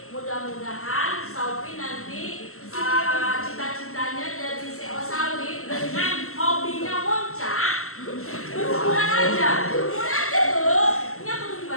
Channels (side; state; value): right; late; 0.63 ms